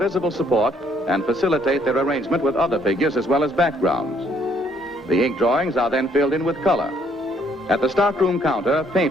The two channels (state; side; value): normal; both; correlation 0.67